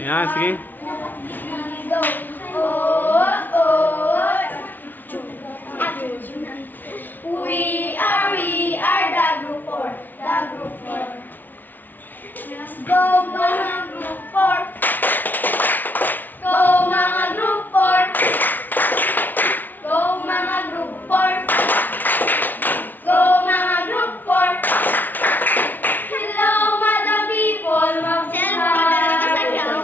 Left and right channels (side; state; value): right; late; 0.085 ms